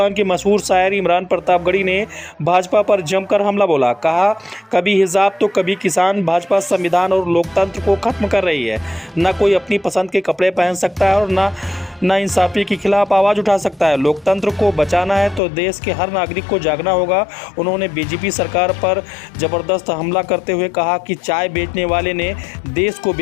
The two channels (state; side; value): drops out; right; at 15.4 s